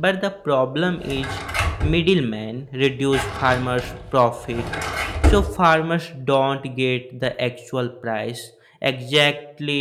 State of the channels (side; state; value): both; identical; correlation 1.00